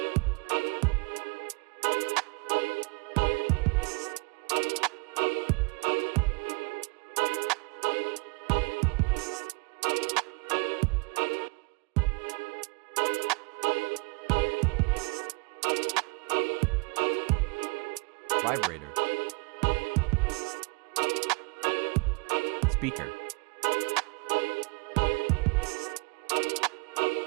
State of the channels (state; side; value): quieter; left; 28.7 dB